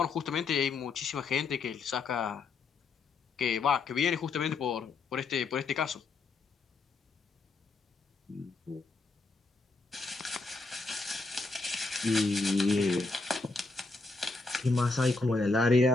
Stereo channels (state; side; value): quieter; right; 3.7 dB